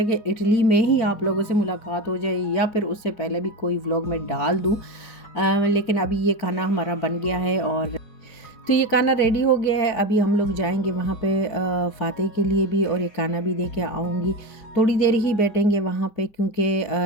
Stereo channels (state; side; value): late; right; 4.8 ms